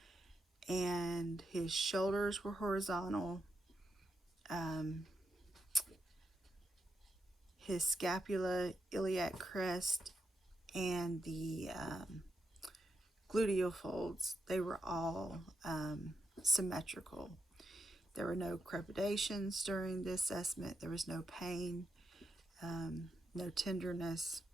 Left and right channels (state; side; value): normal; both; correlation 0.85